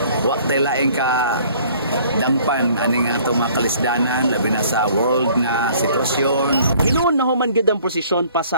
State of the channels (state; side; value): inverted; both; correlation -0.55